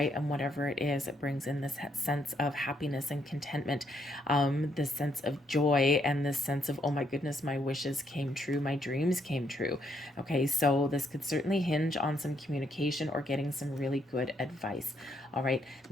and whatever it is, it brings in this sense of happiness and contentment, this sense of joy, and this sense of, oh my goodness, my wishes came true, my dreams came true. Okay, so this could certainly hinge on some communication or getting some really good advice. All right,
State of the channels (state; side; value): normal; both; correlation 0.74